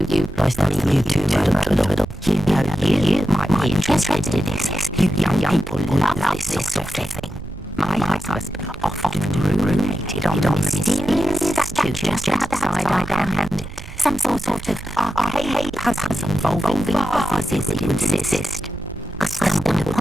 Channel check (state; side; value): noise; right; rumble, 12 dB below the sound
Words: you. Nice to meet you too, Madam Riddle. You might be interested in this. You young people love this sort of thing. My husband often ruminated on the mysterious just outside our hand. Some sort of arcade puzzle involving bosses that you insist. I stumbled